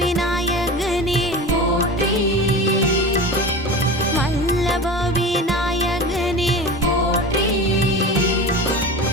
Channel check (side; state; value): both; normal; correlation 0.31